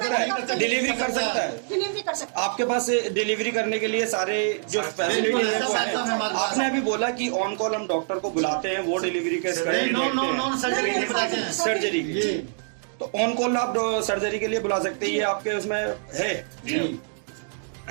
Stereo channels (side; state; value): left; silent; digital silence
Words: है, डिलीवरी कर सकता है। डिलीवरी कर सकते आपके पास डिलीवरी करने के लिए सारे जो फैसिलिटीज है वो है। आपने अभी बोला कि ऑन कॉल हम डॉक्टर को बुलाते हैं, वो डिलीवरी के सर्जरी की, तो ऑन कॉल आप सर्जरी के लिए बुला सकते हैं, ये आपके उसमें है।